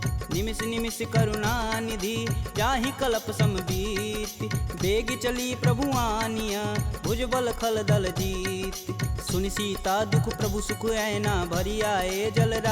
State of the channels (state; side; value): identical; both; correlation 1.00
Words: निमिष निमिष करुणा निधि, जाहि कल्प समबीत। बेग चली प्रभु आनिया, भुजबल खल दल जीत। सुनि सीता दुख प्रभु सुख ऐना, भरी आए जल